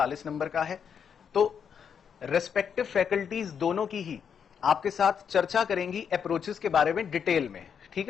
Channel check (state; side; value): quieter; right; 7.4 dB